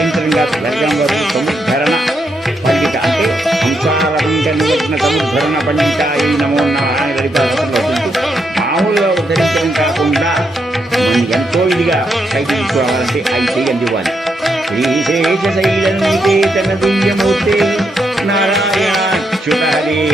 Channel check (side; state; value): both; normal; correlation 0.80